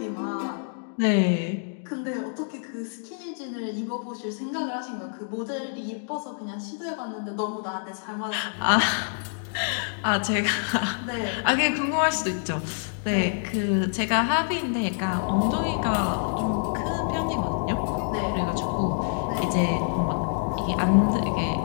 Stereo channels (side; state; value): right; silent; digital silence